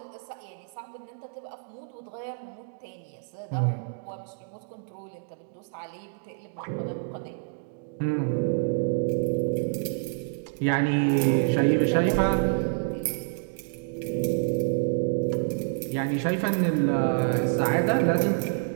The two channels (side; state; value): left; silent; digital silence